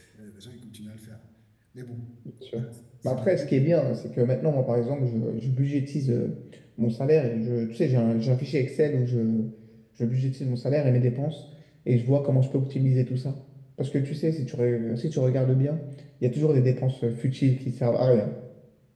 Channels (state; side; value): identical; both; correlation 1.00